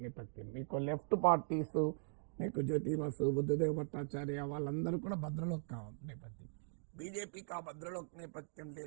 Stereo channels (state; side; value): silent; left; digital silence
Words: నేపథ్యం. మీకు లెఫ్ట్ పార్టీస్, మీకు జ్యోతి బసు, బుద్ధదేవ్ భట్టాచార్య వాళ్ళందరూ కూడా భద్రలోక్ నేపథ్యం. బీజేపీకి ఆ భద్రలోక్ నేపథ్యం